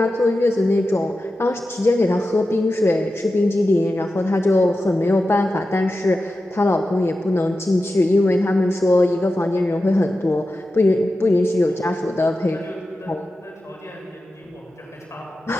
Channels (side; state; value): both; normal; correlation 0.92